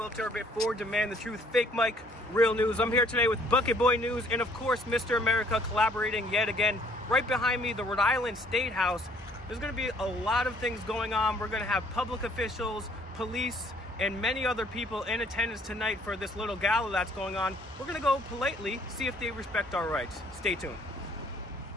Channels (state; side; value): normal; both; correlation 0.61